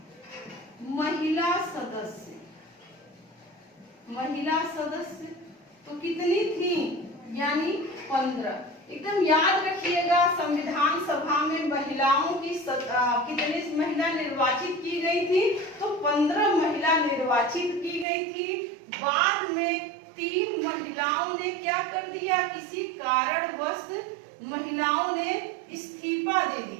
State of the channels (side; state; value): left; drops out; at 18.1 s